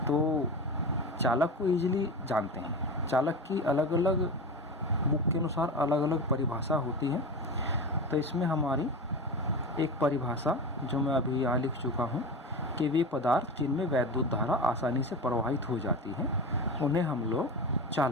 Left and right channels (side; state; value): both; normal; correlation 0.26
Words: तो चालक को ईजिली जानते हैं। चालक की अलग अलग बुक के अनुसार अलग अलग परिभाषा होती है। तो इसमें हमारी एक परिभाषा जो मैं अभी यहाँ लिख चुका हूँ कि वे पदार्थ जिनमें वैद्युत धारा आसानी से प्रवाहित हो जाती है उन्हें हम लोग